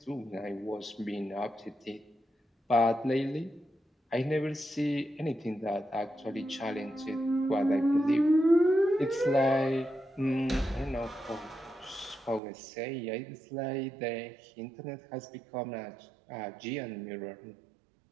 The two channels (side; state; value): left; drops out; at 12.4 s